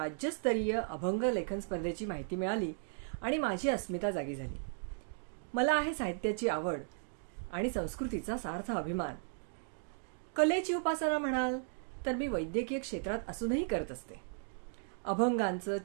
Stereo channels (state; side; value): silent; left; digital silence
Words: अभंग लेखन स्पर्धेची माहिती मिळाली आणि माझी अस्मिता जागी झाली. मला आहे साहित्याची आवड आणि संस्कृतीचा सार्थ अभिमान. कलेची उपासना म्हणाल तर मी वैद्यकीय क्षेत्रात असूनही करत असते. अभंगांचं